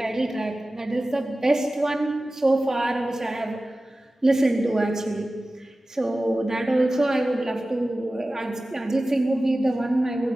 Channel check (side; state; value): both; normal; correlation 0.96